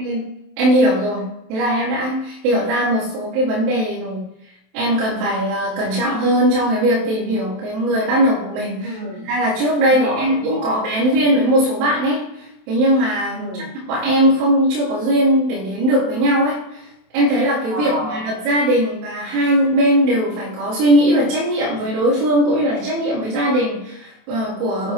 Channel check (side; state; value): left; late; 27 ms